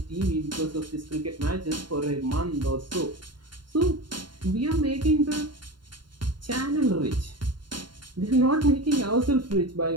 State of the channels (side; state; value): left; late; 0.72 ms